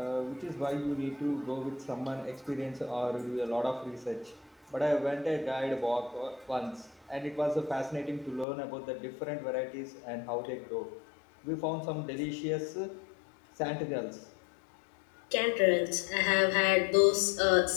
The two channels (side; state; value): right; drops out; at 8.5 s